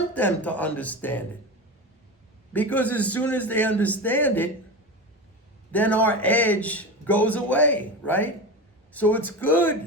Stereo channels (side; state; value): both; normal; correlation 0.24